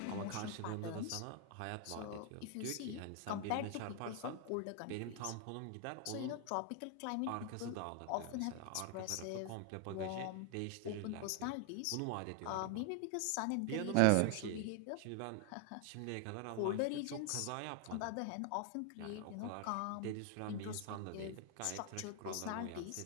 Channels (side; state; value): both; different; correlation 0.00